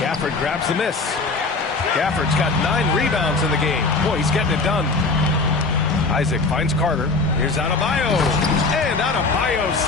grabs the miss. Gafford's got 9 rebounds in the game. Boy, he's getting it done. Isaac finds Carter. Here's Adebayo. And Adebayo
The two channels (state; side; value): quieter; right; 3.8 dB